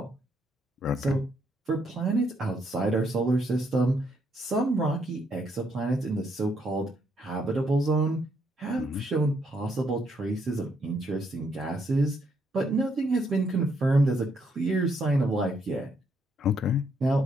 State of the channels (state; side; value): normal; both; correlation 0.73